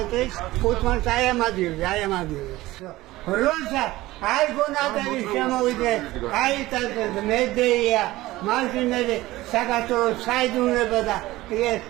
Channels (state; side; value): quieter; left; 17.8 dB